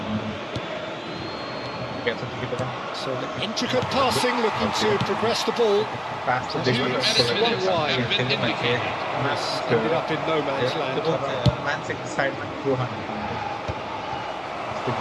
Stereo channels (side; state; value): both; identical; correlation 1.00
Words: So the intricate passing, looking to progress the ball. One wide. Ended up in no man's land.